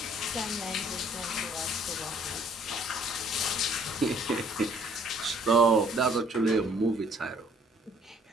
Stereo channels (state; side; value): normal; both; correlation 0.60